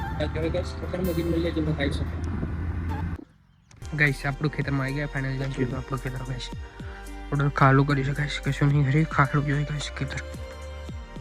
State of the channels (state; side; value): identical; both; correlation 1.00